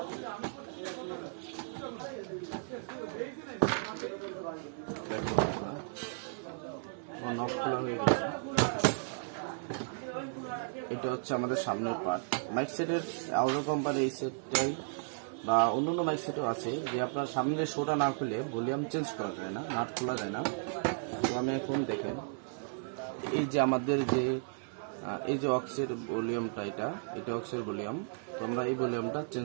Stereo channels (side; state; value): left; silent; 55 dB below the other